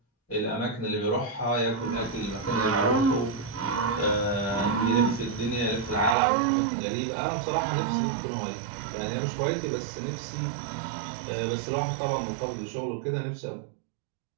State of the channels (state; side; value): drops out; left; at 6.2 s